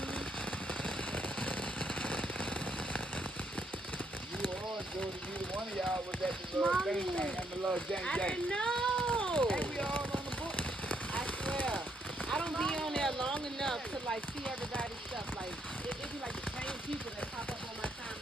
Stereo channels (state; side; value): normal; both; correlation 0.74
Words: One of y'all was at the little thing and the little jank I jank. didn't know. And we all on the book. I swear. I don't be on there long enough to like see everybody's stuff. Like it be like the same people that pop up on my